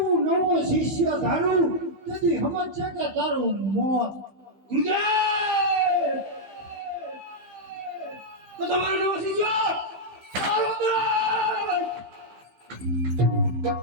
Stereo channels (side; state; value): left; late; 15 ms